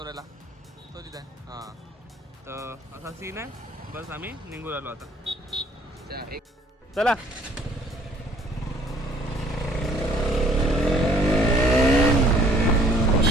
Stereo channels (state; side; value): normal; both; correlation 0.58